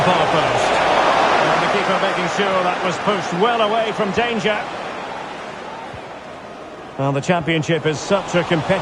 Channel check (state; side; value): identical; both; correlation 1.00